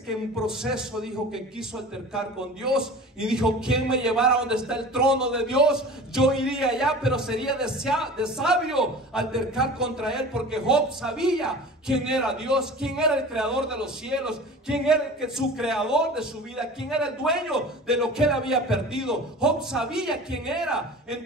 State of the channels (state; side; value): normal; both; correlation 0.38